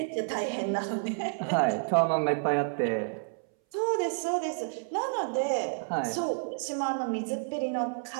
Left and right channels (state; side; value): silent; left; 58 dB below the other